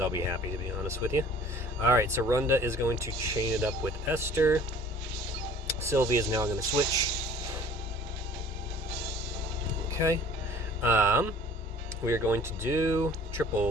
I'll be happy, to be honest with you. All right. So Runda is going to chain it up with Esther. Sylvie is now going to switch. Okay. We are going to do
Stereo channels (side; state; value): right; noise; hum, 26 dB below the sound